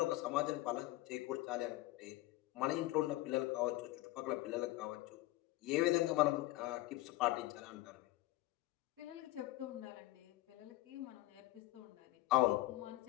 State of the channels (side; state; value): right; quieter; 18.0 dB